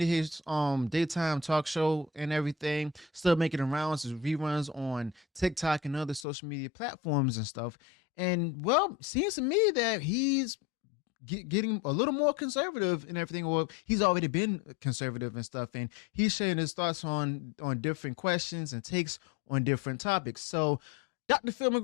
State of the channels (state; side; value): drops out; right; at 6.2 s